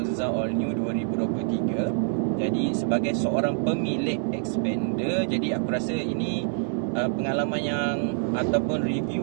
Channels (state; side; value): silent; left; digital silence